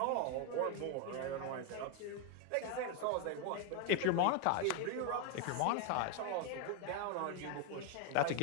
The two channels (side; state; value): both; different; correlation 0.01